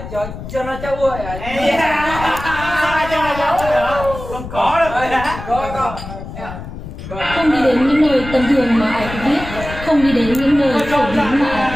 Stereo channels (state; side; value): noise; left; rumble, 11 dB below the sound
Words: cho nó cháu ơi à. Sao cho cháu hả? Không có đâu. Có. Không đi đến những nơi tầm thường mà ai cũng biết, không đi đến những nơi phổ biến mà ai